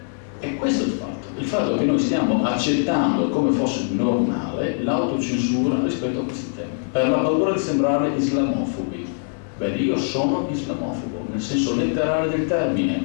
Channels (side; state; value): right; silent; digital silence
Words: E questo è il fatto che noi stiamo accettando come fosse normale l'autocensura rispetto a questi temi, per la paura di sembrare islamofobi. Beh, io sono islamofobo, nel senso letterale del termine,